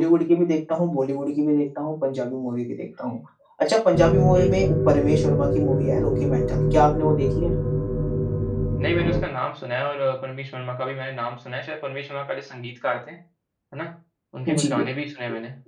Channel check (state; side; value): identical; both; correlation 1.00